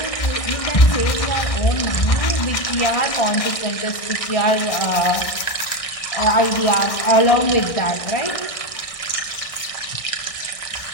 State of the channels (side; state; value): right; late; 1.6 ms